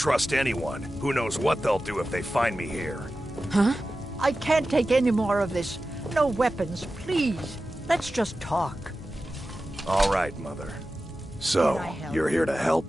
anyone. Who knows what they'll do if they find me here? Huh? I can't take any more of this. No weapons, please. Let's just talk. All right, Mother. So, you're here to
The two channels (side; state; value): both; normal; correlation 0.94